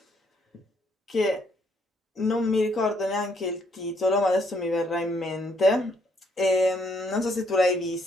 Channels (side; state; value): both; normal; correlation 0.70